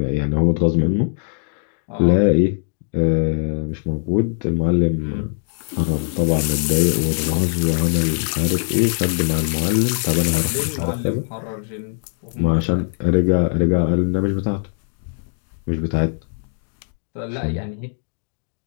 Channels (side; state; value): right; silent; 62 dB below the other